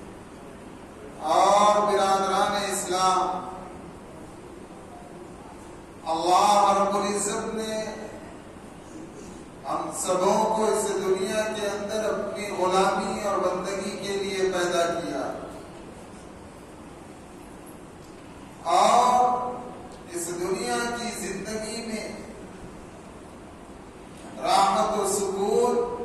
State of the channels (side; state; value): both; identical; correlation 1.00